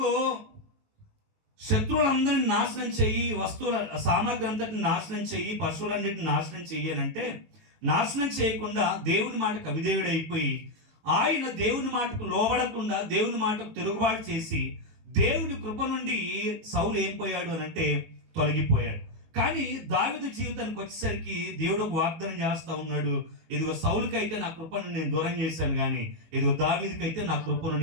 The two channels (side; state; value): left; late; 19 ms